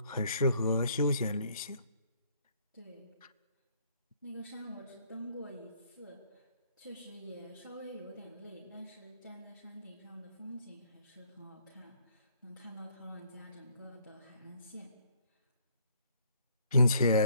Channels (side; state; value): both; inverted; correlation -0.63